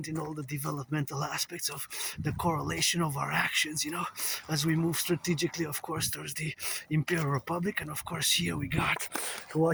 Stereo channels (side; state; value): both; identical; correlation 1.00